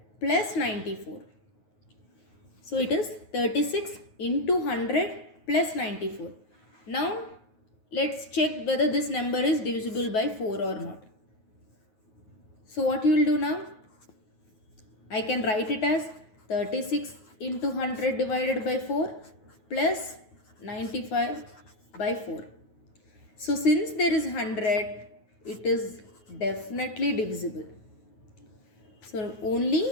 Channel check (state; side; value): late; right; 9.3 ms